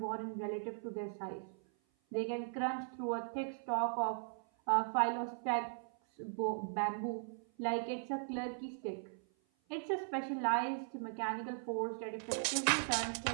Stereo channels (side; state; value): left; silent; 52 dB below the other